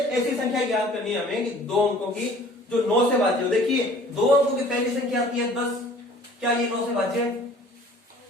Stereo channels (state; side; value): normal; both; correlation 0.51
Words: ऐसी संख्या ज्ञात करनी है हमें कि 2 अंकों की जो 9 से भाज्य हो। देखिए 2 अंकों की पहली संख्या आती है 10, क्या ये 9 से भाज्य है?